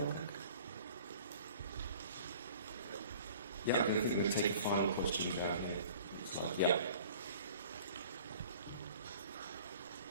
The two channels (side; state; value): both; inverted; correlation -0.48